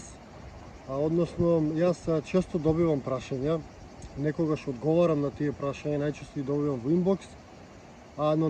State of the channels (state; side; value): identical; both; correlation 1.00